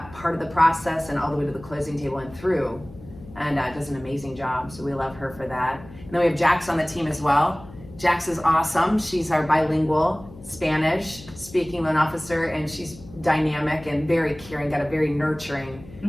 part of the process, and all the way to the closing table and through. and does an amazing job. So we love her for that. And then we have Jax on the team as well. Jax is awesome. She's our bilingual Spanish speaking loan officer, and she's dynamic and very caring, got a very nurturing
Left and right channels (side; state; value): left; noise; hum, 18 dB below the sound